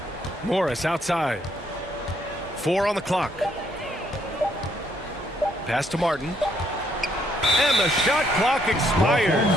Morris outside. 4 on the clock. Pass to Martin. And the shot clock expired.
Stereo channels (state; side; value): normal; both; correlation 0.70